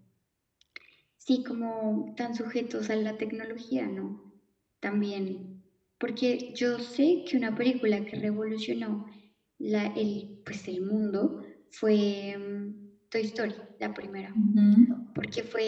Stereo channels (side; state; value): both; identical; correlation 1.00